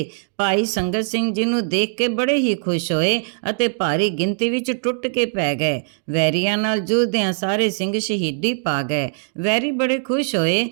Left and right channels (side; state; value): left; silent; digital silence